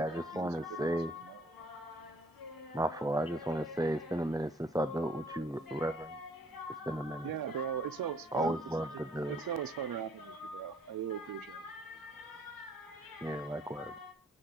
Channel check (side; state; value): both; normal; correlation 0.61